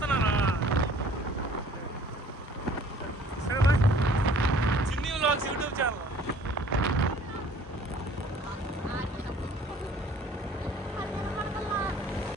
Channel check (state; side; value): normal; both; correlation 0.54